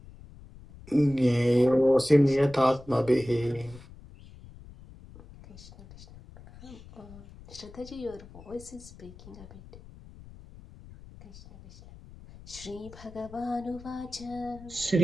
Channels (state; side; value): noise; left; rumble, 19 dB below the sound